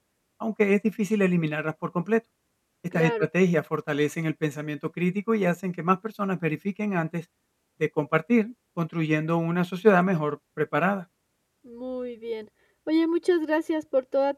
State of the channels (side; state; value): both; identical; correlation 1.00